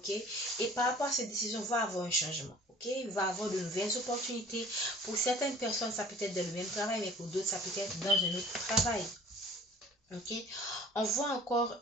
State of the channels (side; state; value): both; normal; correlation 0.49